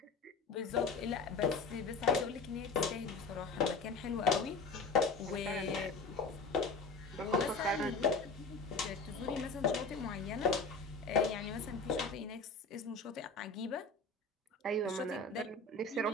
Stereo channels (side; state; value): right; quieter; 3.9 dB